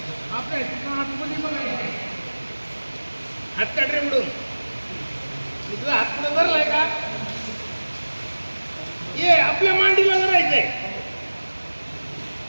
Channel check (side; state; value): both; inverted; correlation -1.00